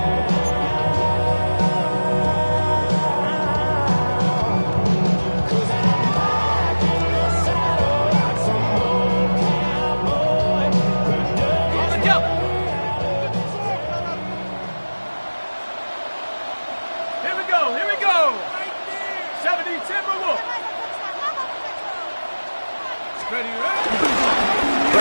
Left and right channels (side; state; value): both; inverted; correlation -1.00